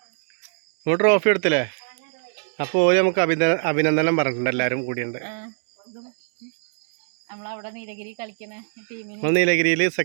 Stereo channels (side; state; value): left; silent; digital silence